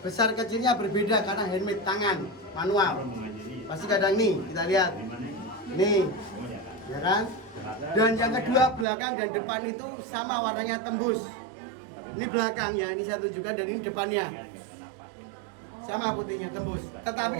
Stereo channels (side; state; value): left; drops out; at 8.8 s